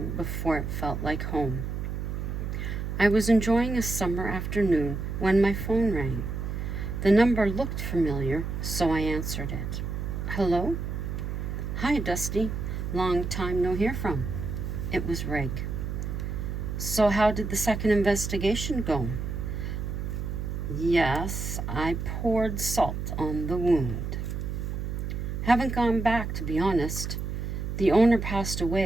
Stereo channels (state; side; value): noise; right; hum, 4 dB below the sound